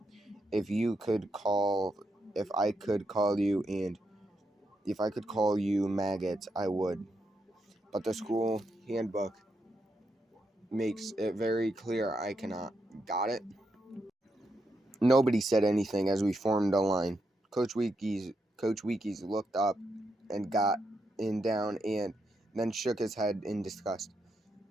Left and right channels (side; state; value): both; normal; correlation 0.82